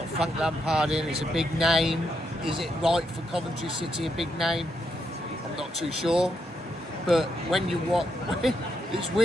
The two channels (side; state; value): both; normal; correlation 0.80